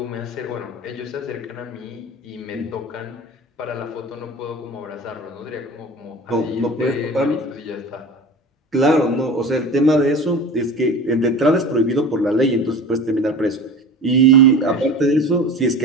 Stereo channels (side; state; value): both; normal; correlation 0.36